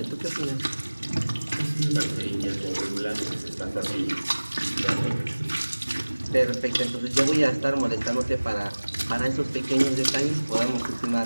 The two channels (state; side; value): inverted; both; correlation -1.00